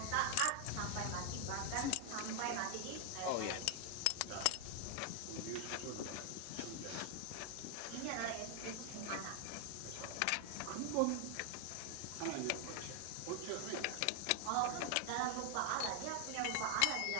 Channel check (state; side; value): different; both; correlation 0.00